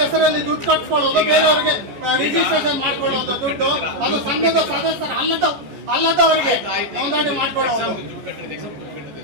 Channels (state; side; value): late; left; 14 ms